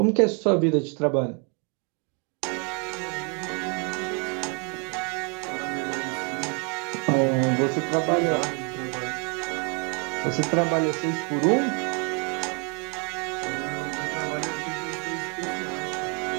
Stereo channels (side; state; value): left; quieter; 35.3 dB